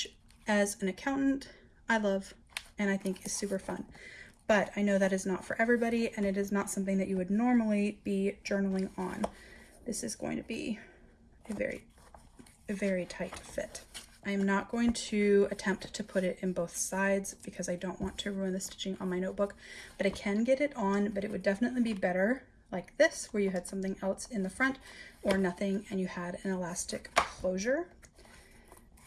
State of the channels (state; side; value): identical; both; correlation 1.00